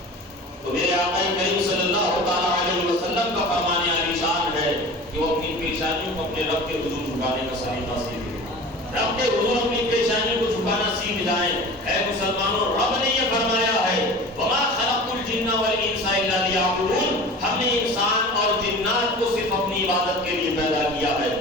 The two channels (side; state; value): both; normal; correlation 0.37